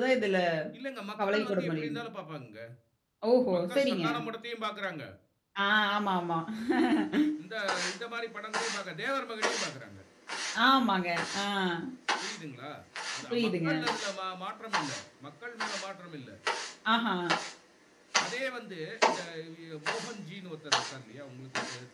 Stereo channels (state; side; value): identical; both; correlation 1.00